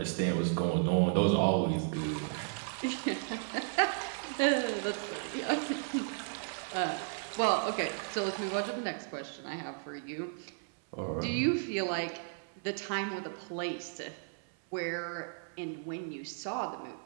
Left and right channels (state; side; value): silent; left; 55 dB below the other